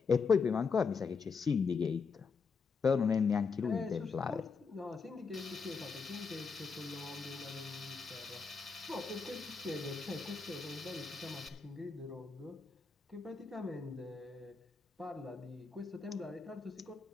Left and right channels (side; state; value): right; quieter; 5.2 dB